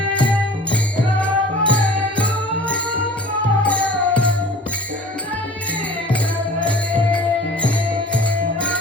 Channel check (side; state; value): both; normal; correlation 0.45